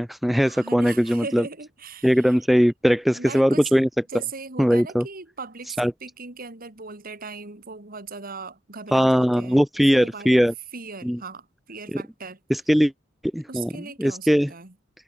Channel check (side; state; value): both; normal; correlation 0.98